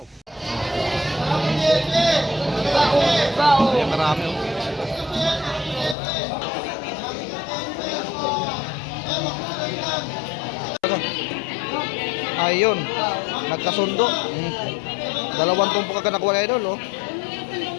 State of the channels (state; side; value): drops out; right; at 6.0 s